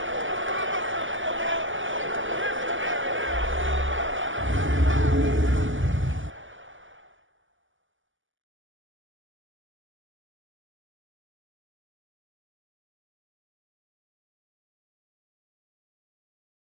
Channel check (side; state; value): left; late; 0.57 ms